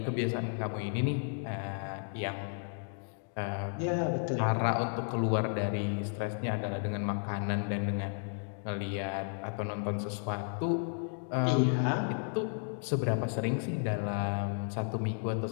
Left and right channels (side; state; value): right; silent; 56 dB below the other